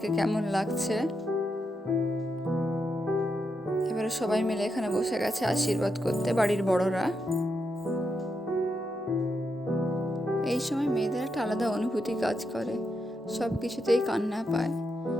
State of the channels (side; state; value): both; normal; correlation 0.84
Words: কেমন লাগছে। এবারে সবাই মিলে এখানে বসে গেছে আশীর্বাদ করতে, বাড়ির বড়রা। এই সময় মেয়েদের একটা আলাদা অনুভূতি কাজ করে, সব কিছুতেই কান্না পায়।